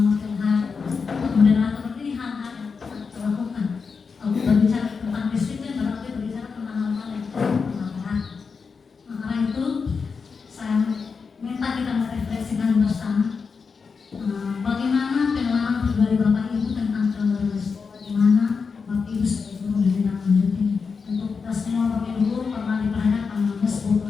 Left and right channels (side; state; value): right; quieter; 5.3 dB